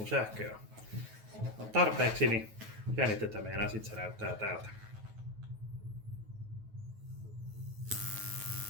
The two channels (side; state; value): left; late; 9.3 ms